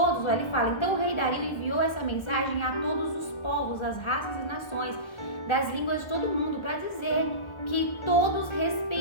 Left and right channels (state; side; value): late; right; 1.3 ms